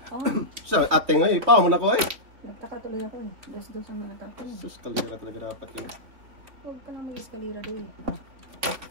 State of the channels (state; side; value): late; left; 3.8 ms